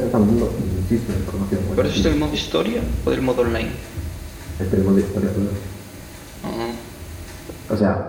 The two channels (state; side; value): identical; both; correlation 1.00